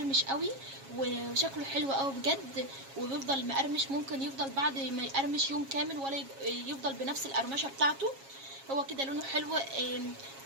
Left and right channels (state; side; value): late; left; 7.3 ms